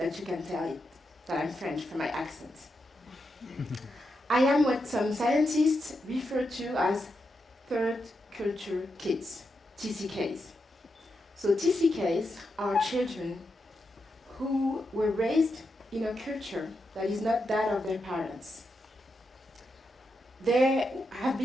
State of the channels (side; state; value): both; normal; correlation 0.85